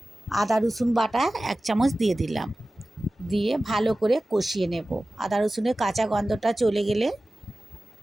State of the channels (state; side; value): normal; both; correlation 0.96